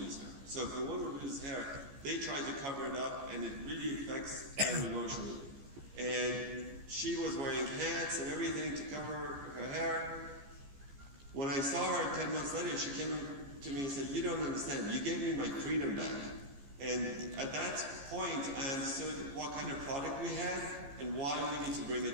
hair. So if a woman loses hair, they try to cover it up, and it really affects them emotionally. And she was wearing hats and everything to cover her hair. When I saw her 10 months later, she came to me and said, "You don't understand. You gave me my freedom back." And at that point, I understood what kind of product we had and why we need to bring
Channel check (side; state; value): left; late; 14 ms